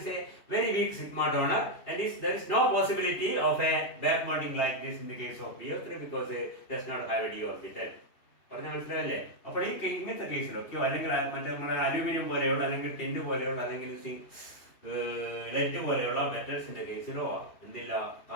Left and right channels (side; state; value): right; late; 2.8 ms